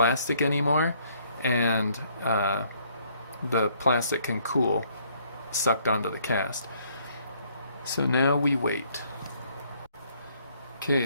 anymore, and the plastic can cool sucked onto the cast. So now we wait. Okay,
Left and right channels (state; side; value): inverted; both; correlation -0.65